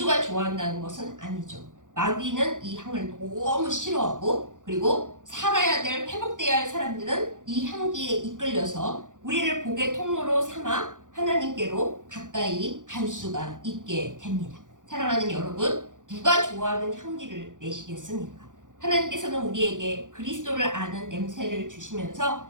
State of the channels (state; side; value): late; left; 0.87 ms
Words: 좋아한다는 것은 아니죠. 마귀는 이 향을 너무 싫어하고 그리고 살아야 될, 회복돼야 할 사람들은 이 향기에 이끌려서 우리를 복의 통로로 삼아 하나님께로 가까이 갈 수가 있게 됩니다. 사랑하는 여러분, 누가 좋아하는 향기를 내시겠습니까? 하나님께서는 우리에게 그리스도를 아는 냄새를